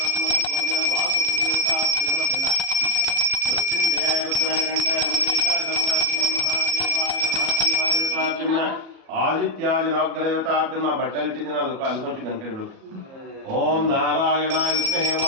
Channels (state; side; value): late; left; 37 ms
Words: ಆದಿತ್ಯಾದಿನಾಗ್ರಹತಾಭ್ಯಮ ಬಟ್ಟಲಿಟ್ಟಿದ್ದೀನಿ ಅದಕ್ಕೆ ಅನ್ಕೊಂಚು ಗಂಟೆಬೇಕು. ಓಂ ನಾರಾಯಣಾಯ ವಿದ್ಮಹೇ